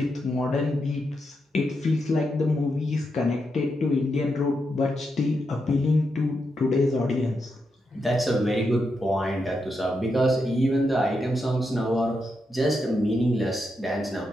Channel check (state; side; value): normal; both; correlation 0.84